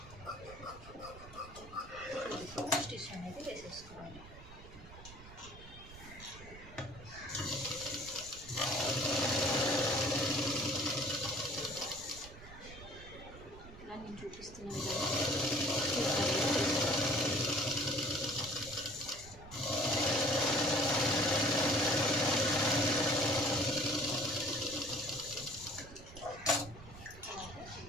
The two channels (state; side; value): noise; right; rumble, 17 dB below the sound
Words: స్టిచ్ అనేది వేసేసుకోవాలి. ఇలా నేను చూపిస్తున్న విధంగా